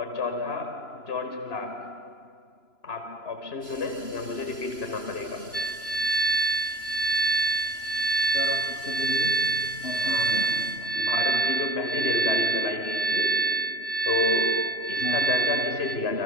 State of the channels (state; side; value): late; right; 3.0 ms